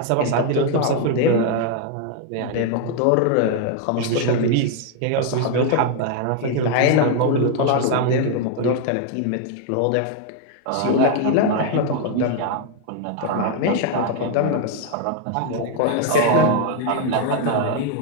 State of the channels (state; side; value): different; both; correlation 0.00